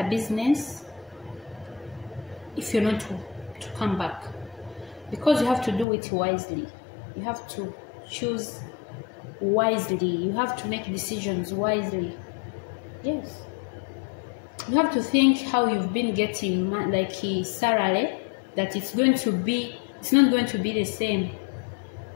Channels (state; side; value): drops out; right; at 5.9 s